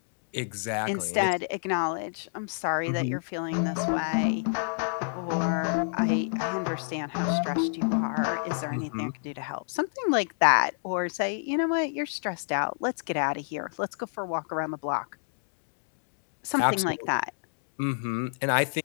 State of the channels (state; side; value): silent; right; digital silence